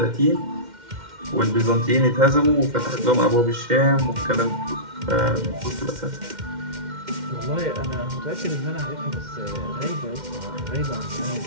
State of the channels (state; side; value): late; left; 2.1 ms